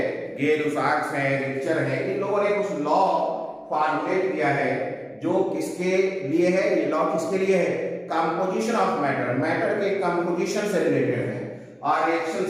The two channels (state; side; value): identical; both; correlation 1.00